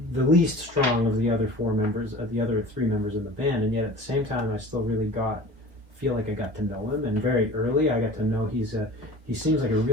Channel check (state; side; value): late; left; 1.1 ms